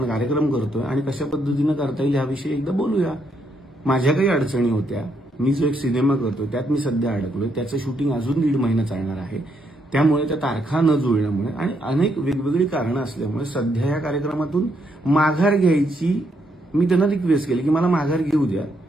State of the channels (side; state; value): both; normal; correlation 0.76